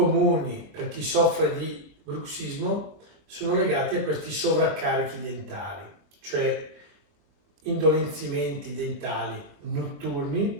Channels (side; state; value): left; late; 21 ms